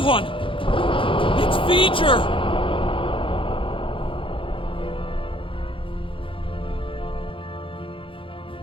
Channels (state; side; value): late; right; 0.25 ms